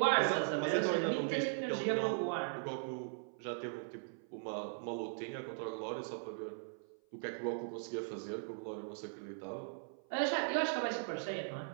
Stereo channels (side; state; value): left; silent; 52 dB below the other